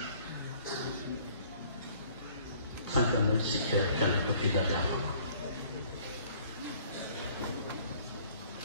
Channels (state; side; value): inverted; both; correlation -0.56